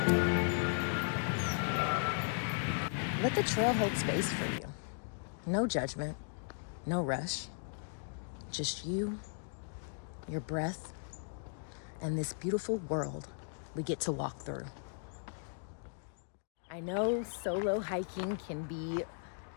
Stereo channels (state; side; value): silent; right; digital silence